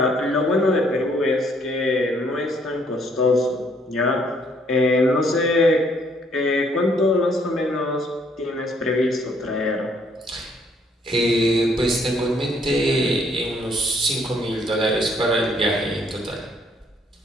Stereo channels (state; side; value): normal; both; correlation 0.66